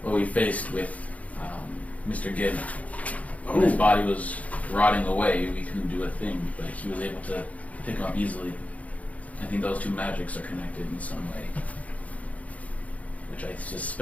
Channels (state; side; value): late; right; 0.069 ms